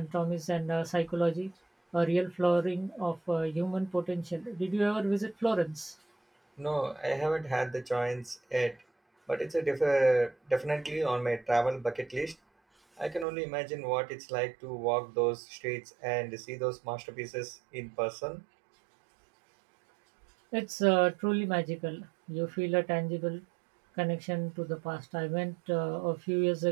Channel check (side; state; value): left; drops out; at 13.2 s